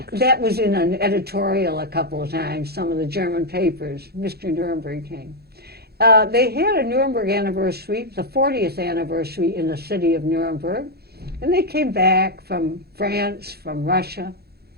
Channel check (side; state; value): left; late; 0.46 ms